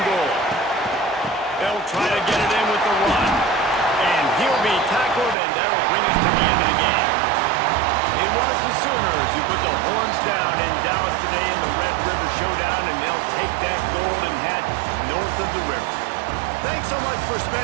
goal. They'll try to get it in with the run. And he'll be tackled, and that'll bring us to the end of the game. It was the Sooners who put the horns down in Dallas today in the Red River Showdown, and they'll take that golden hat north of the river. Thanks so much for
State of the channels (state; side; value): drops out; left; at 5.4 s